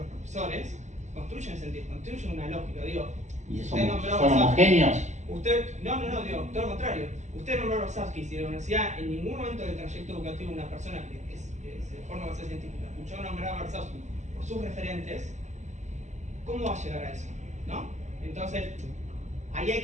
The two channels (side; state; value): left; late; 0.33 ms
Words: profesores, construyen sentido, construyen una lógica. Digo, ¿Y usted nombró son homogéneos? No, digo, todo lo contrario. Usted nombró a Rosavsky, si la universidad en ningún momento del trayecto educativo de una persona que se forma a ser científica escuchó nombrar a Rosavsky por sus referentes, ¿cómo va a llegar a eso? ¿No? Entonces, ahí hay